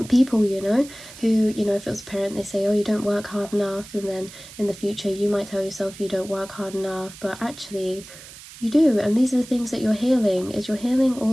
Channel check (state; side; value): noise; right; hiss, 17 dB below the sound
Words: people, you know, who, you know, if it was a parent, they say, oh, you don't work hard enough, and then in the future you might tell yourself you don't work hard enough, but actually you do. And these are the things that you're healing, is you're healing